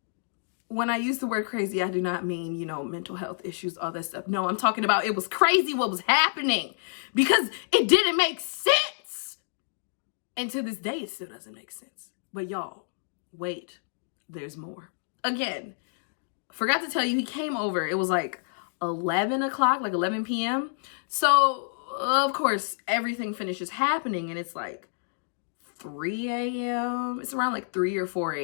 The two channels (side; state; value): right; silent; digital silence